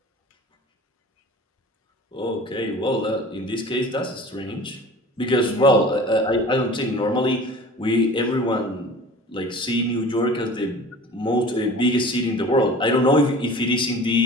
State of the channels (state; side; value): normal; both; correlation 0.42